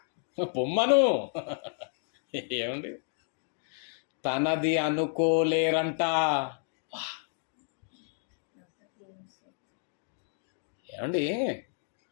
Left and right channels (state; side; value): silent; right; digital silence